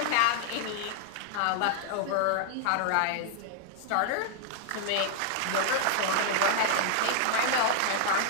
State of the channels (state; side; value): different; both; correlation 0.00